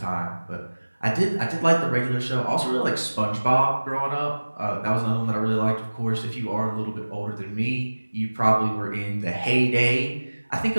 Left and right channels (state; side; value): inverted; both; correlation -1.00